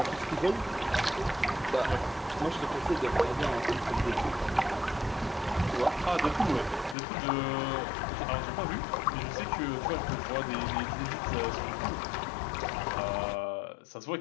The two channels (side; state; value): right; drops out; at 7.0 s